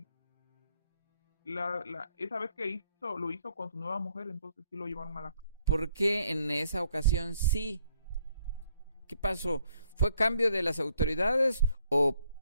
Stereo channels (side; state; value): both; inverted; correlation -0.70